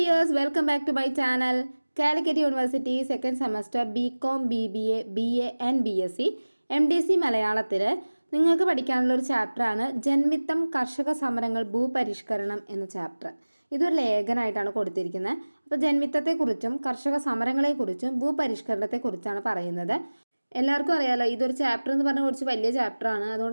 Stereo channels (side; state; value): both; inverted; correlation -1.00